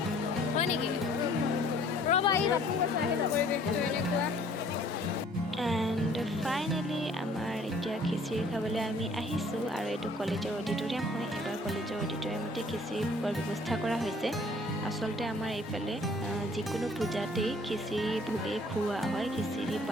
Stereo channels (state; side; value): normal; both; correlation 0.56